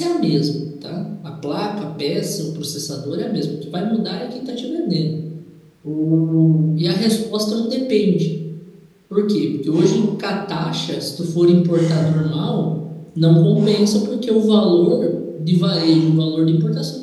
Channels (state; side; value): identical; both; correlation 1.00